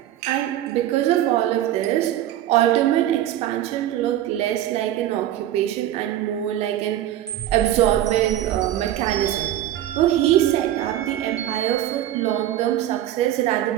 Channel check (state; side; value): quieter; left; 12.7 dB